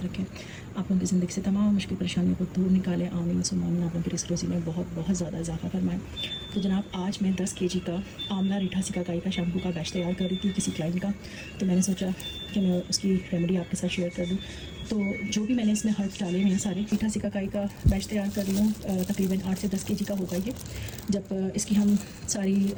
रखें, आप लोगों की ज़िंदगी से तमाम मुश्किल परेशानियों को दूर निकाले। आमीन सुम्मा आमीन। आप लोगों की रिस्क रोज़ी में बहुत बहुत ज़्यादा इजाफा फरमाएं। तो जनाब, आज मैं 10 kg का आंवला रीठा सिकाकाई का शैम्पू का बैच तैयार कर रही थी किसी क्लाइंट का, तो मैंने सोचा कि मैं उसकी रेमेडी आपके साथ शेयर कर दूँ। तो जो भी मैंने इसमें हर्ब्स डाले हुए हैं सारे, रीठा सिकाकाई का बैच तैयार कर रही हूँ। तकरीबन 8 से 10 kg का होगा ये। जब इसकी हम सारी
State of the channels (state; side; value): identical; both; correlation 1.00